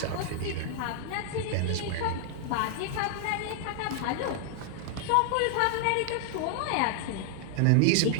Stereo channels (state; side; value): different; both; correlation 0.00